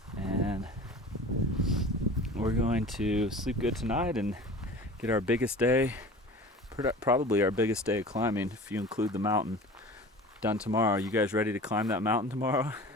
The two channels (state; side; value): normal; both; correlation 0.39